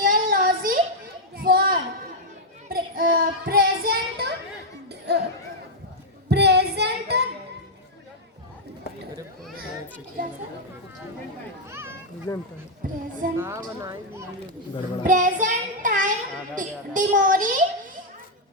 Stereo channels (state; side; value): normal; both; correlation -0.02